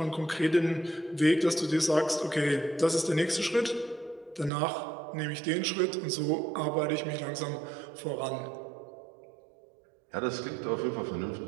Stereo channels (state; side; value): drops out; left; at 4.5 s